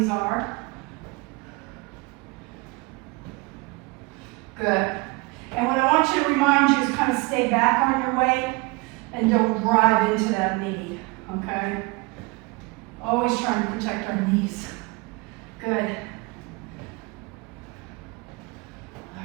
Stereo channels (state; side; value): quieter; left; 25.9 dB